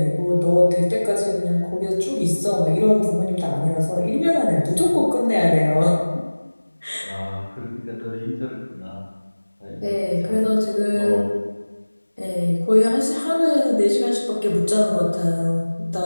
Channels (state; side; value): inverted; both; correlation -1.00